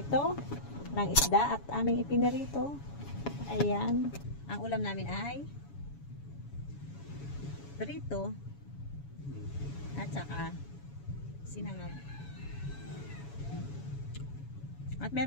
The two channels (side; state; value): right; late; 7.1 ms